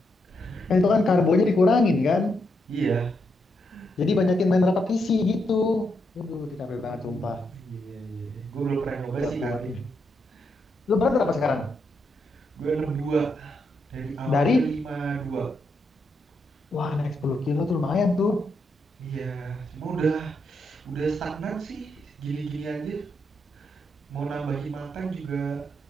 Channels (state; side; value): normal; both; correlation 0.80